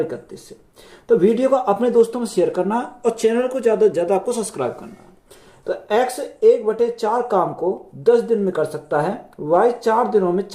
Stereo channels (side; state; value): both; identical; correlation 1.00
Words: 31 से। तो वीडियो को अपने दोस्तों में शेयर करना और चैनल को ज़्यादा से ज़्यादा आपको सब्सक्राइब करना। तो x 1/4 काम को 10 दिन में कर सकता है, y 4 दिनों में